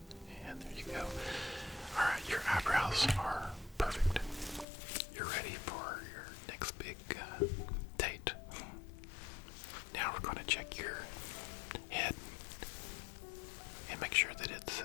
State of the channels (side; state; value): right; drops out; at 4.7 s